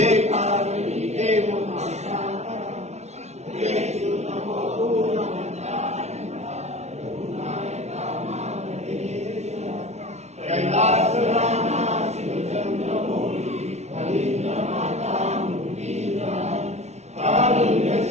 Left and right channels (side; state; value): left; late; 0.32 ms